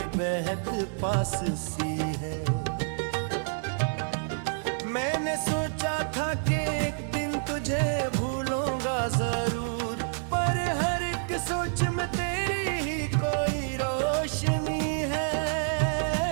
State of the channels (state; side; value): silent; left; digital silence